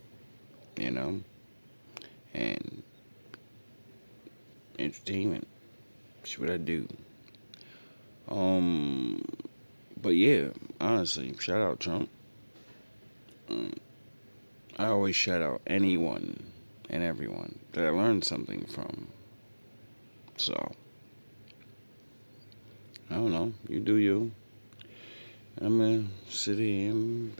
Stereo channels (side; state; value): both; inverted; correlation -1.00